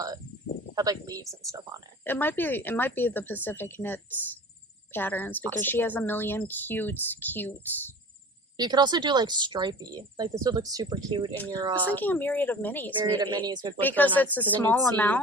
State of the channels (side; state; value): both; normal; correlation 0.40